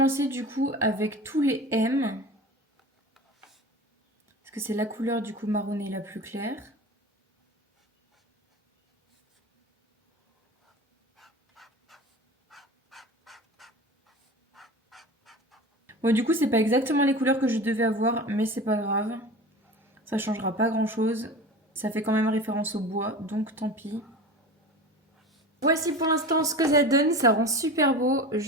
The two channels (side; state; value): both; normal; correlation 0.33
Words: du coup avec tous les M. Parce que c'est la couleur du coup marronné la plus claire. Bon, du coup, c'est pas exactement les couleurs que je devais avoir, mais c'est pas grave. Ça changera pas grand chose. Ça fait quand même référence au bois, donc tant pis. Voici pour l'instant ce que ça donne. Ça rend super beau.